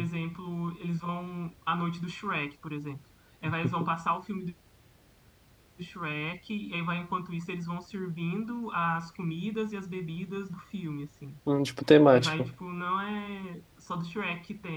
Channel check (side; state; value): both; identical; correlation 1.00